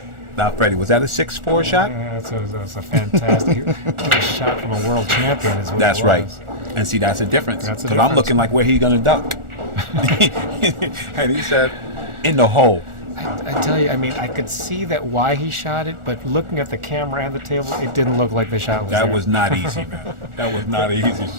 Now, Freddie, was that a 6-4 shot? That's a fantastic shot from a world champion. Is what That's it right. was. And see, that's a difference. That's a Because I'm difference. looking like where he's going to duck. And he said, in the hole. I tell you, I mean, I could see that why he shot it, but looking at the camera and the table, it didn't look like the shot was That there. was not easy, man. That was not an easy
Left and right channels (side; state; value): left; late; 1.4 ms